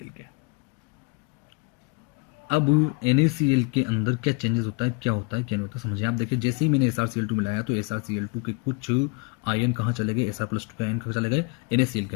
के। अब NaCl के अंदर क्या चेंजेस होता है, क्या होता है, क्या नहीं होता, समझिए आप। देखिए जैसे ही मैंने SrCl2 मिलाया तो SrCl2 के कुछ आयन कहाँ चले गए, Sr+2 के आयन कहाँ चले गए, NaCl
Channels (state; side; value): quieter; right; 31.5 dB